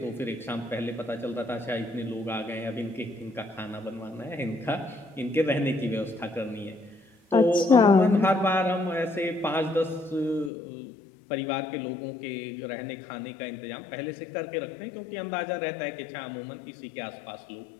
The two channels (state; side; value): drops out; right; at 10.5 s